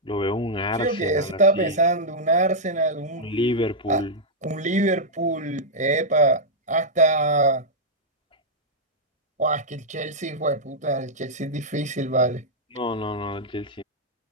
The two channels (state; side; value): normal; both; correlation -0.07